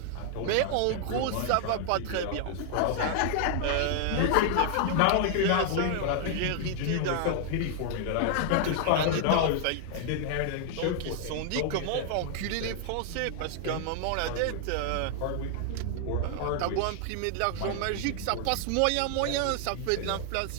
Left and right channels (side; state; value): both; different; correlation 0.00